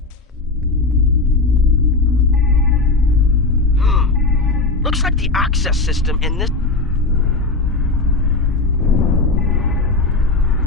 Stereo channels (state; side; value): quieter; right; 3.5 dB